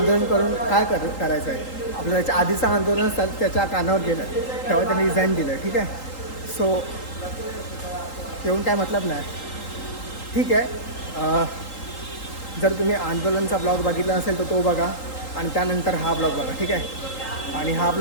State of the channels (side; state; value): right; late; 3.8 ms